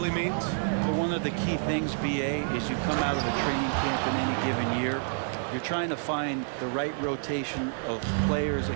means? Well, one of the key things, BA, is you come out of a training camp in any given year. You're trying to find the right rotation of players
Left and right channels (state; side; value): silent; left; 59 dB below the other